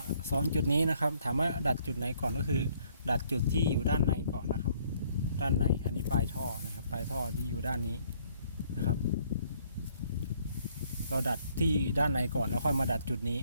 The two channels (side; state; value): both; inverted; correlation -0.65